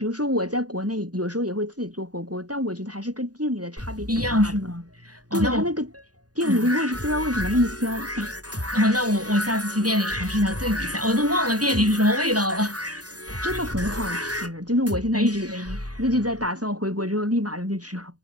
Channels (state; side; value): late; left; 0.68 ms